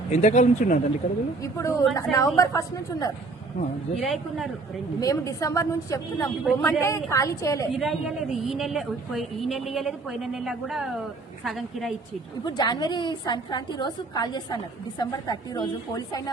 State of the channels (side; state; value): left; quieter; 3.6 dB